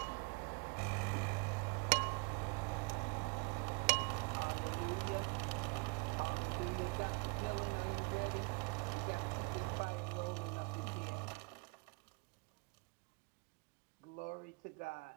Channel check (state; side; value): quieter; left; 31.9 dB